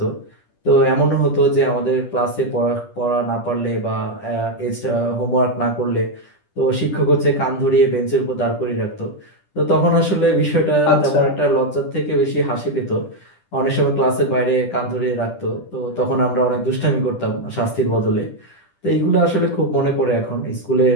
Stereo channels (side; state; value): right; late; 10 ms